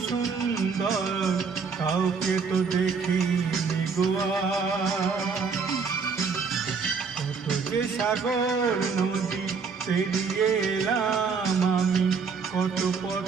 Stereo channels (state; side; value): quieter; left; 5.3 dB